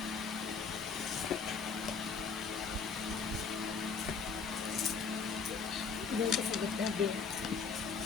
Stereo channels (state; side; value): quieter; right; 5.2 dB